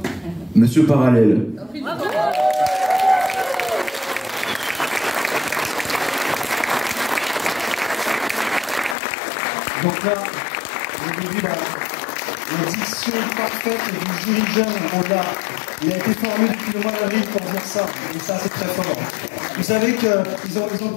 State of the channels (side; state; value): right; drops out; at 9.0 s